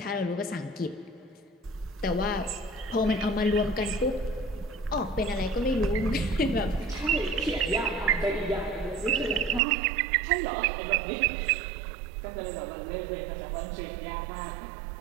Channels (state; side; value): drops out; left; at 9.6 s